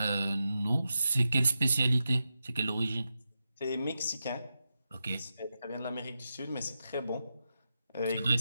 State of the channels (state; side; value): inverted; both; correlation -0.88